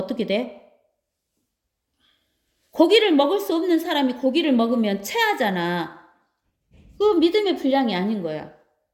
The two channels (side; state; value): both; identical; correlation 1.00